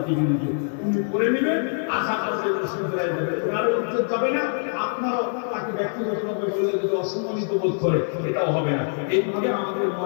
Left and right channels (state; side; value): silent; right; digital silence